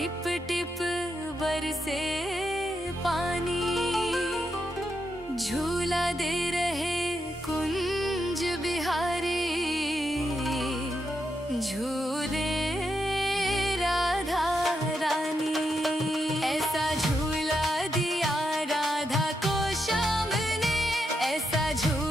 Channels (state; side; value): normal; both; correlation 0.83